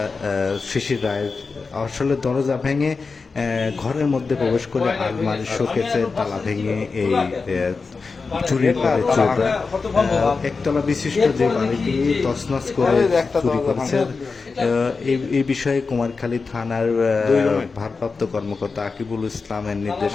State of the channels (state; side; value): quieter; right; 4.5 dB